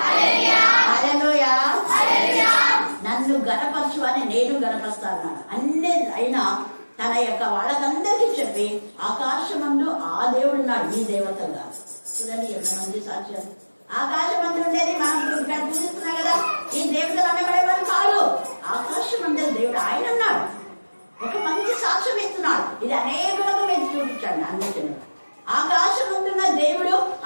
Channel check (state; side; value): inverted; both; correlation -1.00